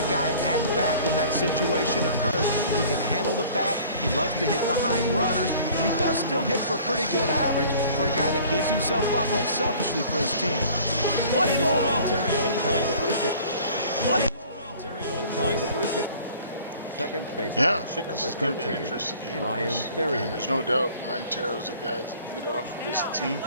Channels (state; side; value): inverted; both; correlation -0.49